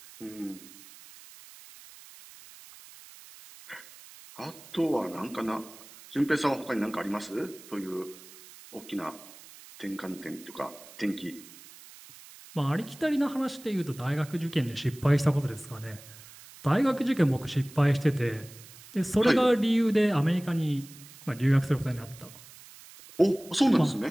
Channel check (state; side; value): noise; right; hiss, 20 dB below the sound